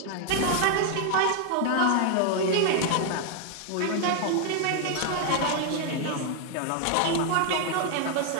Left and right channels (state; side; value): different; both; correlation 0.00